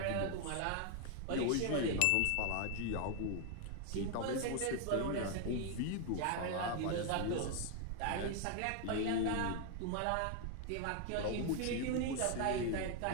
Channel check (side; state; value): both; different; correlation 0.00